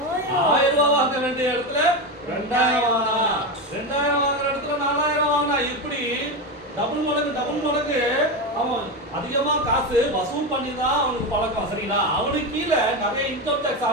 1000 ரூபாய் வாங்க வேண்டிய இடத்துல 2000 வாங்கினான். 2000 வாங்குற இடத்துல 4000 வாங்கினான். இப்படி டபுள் மடங்கு அவன் அதிகமா காசு வசூல் பண்ணி தான் அவனுக்கு பழக்கம். சரிங்களா? அவனுக்கு கீழே நிறைய இன்கம் டாக்ஸ்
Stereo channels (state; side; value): normal; both; correlation 0.16